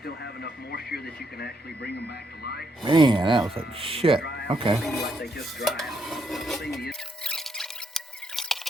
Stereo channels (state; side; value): normal; both; correlation 0.76